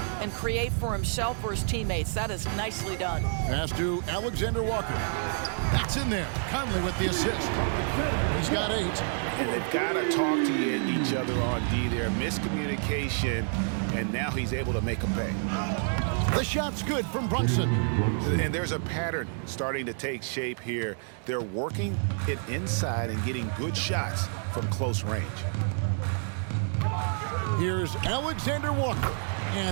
and create for himself or his teammates. That is nicely done. Pass to Alexander Walker. That's in there. Conley with the assist. He's got 8. And they've got to talk to each other on D there. Miscommunication, and now he's able to make a pay. The shot's good from Brunson. And there's a pattern starting to take shape here. They're working it inside and getting good shots from close range. Here's Alexander Walker.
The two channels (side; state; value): left; silent; 59 dB below the other